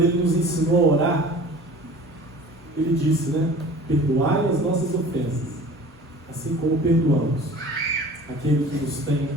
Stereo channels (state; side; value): normal; both; correlation 0.43